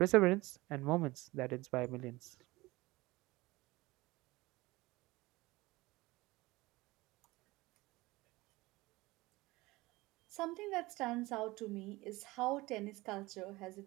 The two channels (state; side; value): quieter; left; 20.8 dB